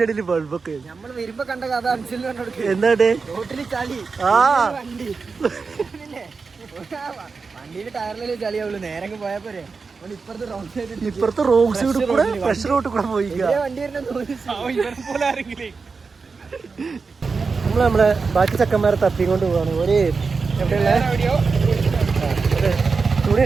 ഇടയിൽ ബൾബൊക്കെ നമ്മള് വരുമ്പോ കണ്ട കഥ അനുസരിച്ച് എന്താ റോട്ടില് ചളി വണ്ടി വണ്ടിയില് ടയറില് ചളിയാവുള്ളൂ. നേരെ പോയാ പോരെ. ഇപ്പുറത്തെ റോഡ് സൈഡ് കൂടെ ഫ്രഷ് റോഡ് കൂടെ പോയി വണ്ടി നമ്മളെ ബാക്കി ചക്കന്മാരെ തപ്പിക്കൊണ്ട് പോവാണ്. ഒരു എവിടെയുള്ള തുണി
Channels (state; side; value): quieter; left; 4.7 dB